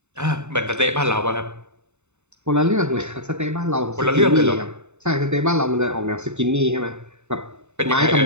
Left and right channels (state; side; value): late; left; 0.82 ms